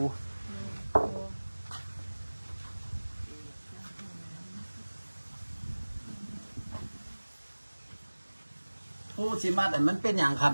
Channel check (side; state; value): both; inverted; correlation -1.00